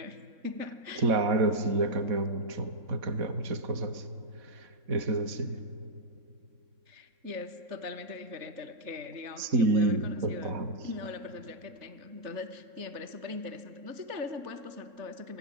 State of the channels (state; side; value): late; left; 3.6 ms